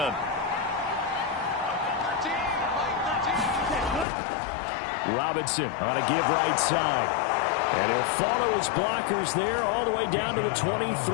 10. Robinson on a give right side. And he'll follow his blockers there all the way down to the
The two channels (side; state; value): right; drops out; at 4.0 s